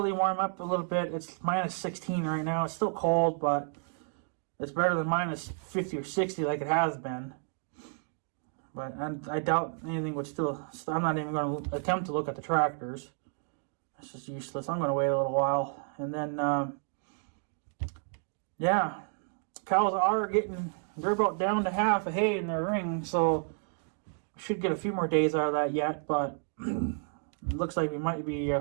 warm up a little bit. It's minus 16 right now. It's still cold, but it's better than minus 50 or 60 like it has been. But I doubt anything would still... I'm not even going to attempt to look at the tractors. It's just useless. I'm going to wait a little while. And then, yeah. Cows are they're about down to half a hay in their ring, so we should get a few more days out of that yet, but it looks like we might be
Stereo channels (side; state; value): left; silent; 56 dB below the other